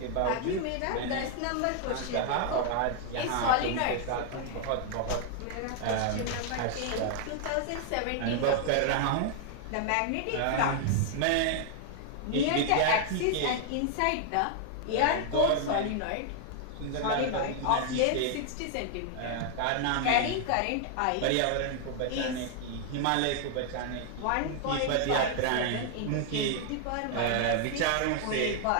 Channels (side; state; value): both; different; correlation 0.00